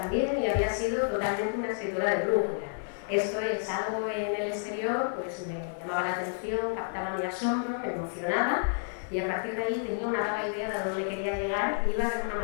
y había sido totalmente una escritora de brújula. Esto es, algo en el exterior pues me llamaba la atención, captaba mi asombro, me emocionaba y a partir de ahí tenía una vaga idea de dónde quería llegar y iba de una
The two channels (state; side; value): silent; right; 58 dB below the other